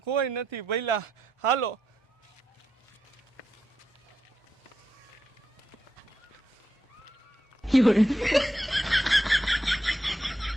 કોઈ નથી ભઈલા, હાલો.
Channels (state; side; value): normal; both; correlation 0.84